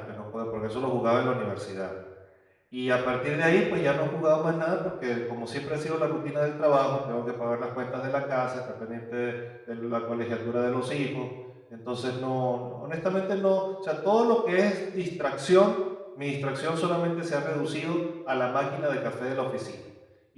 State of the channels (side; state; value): both; identical; correlation 1.00